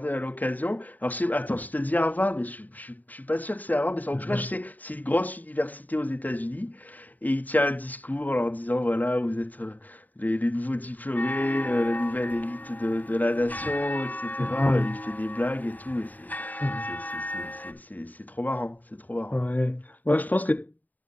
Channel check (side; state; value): right; late; 0.082 ms